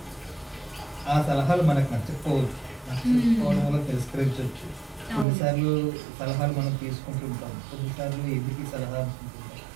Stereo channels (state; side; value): drops out; left; at 5.2 s